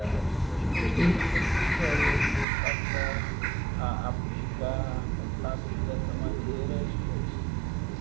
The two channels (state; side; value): drops out; left; at 2.5 s